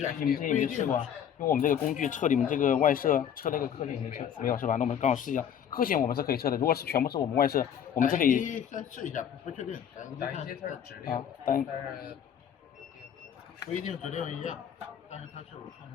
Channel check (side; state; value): right; quieter; 8.8 dB